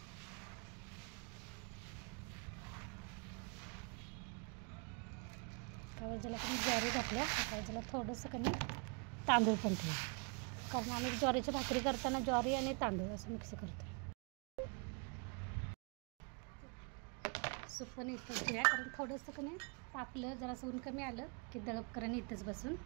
ज्याला पण ज्वारी घातल्या, ज्याला थोडंसं कमी तांदूळ पण ठेवू, कारण आम्ही ज्वारीची भाकरी करताना ज्वारी आणि तांदूळ असं मिक्स करतो. सूप पण इथंच ठेवूया, कारण थोडंसं कमी तापलं जरासं ऊन कमी आलं की दळप करून इथंच बसून.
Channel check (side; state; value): left; quieter; 35.0 dB